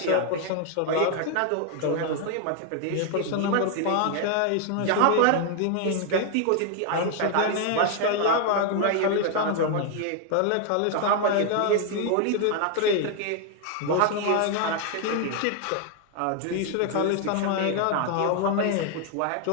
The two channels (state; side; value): different; both; correlation 0.00